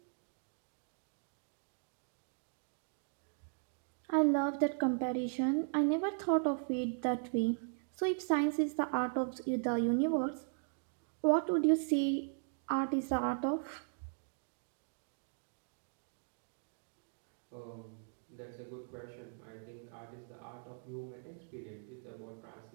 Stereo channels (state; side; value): silent; left; digital silence